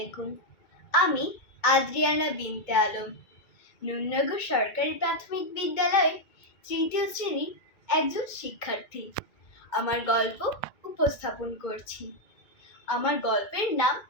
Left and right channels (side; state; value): right; late; 2.1 ms